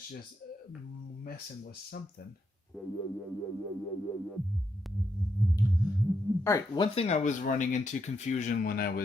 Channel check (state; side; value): normal; both; correlation 0.80